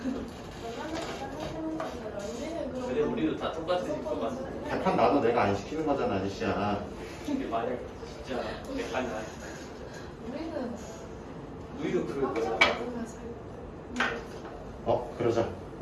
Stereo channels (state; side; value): identical; both; correlation 1.00